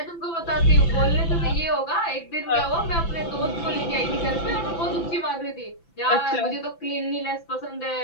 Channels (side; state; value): right; late; 6.0 ms